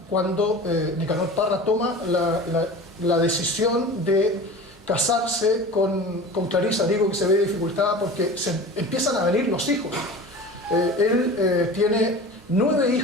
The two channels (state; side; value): normal; both; correlation 0.36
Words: cuando Nicanor Parra toma la decisión de casarse con Clarisa. Digo que se ve dificultada porque se empiezan a venir los hijos. Él tiene 9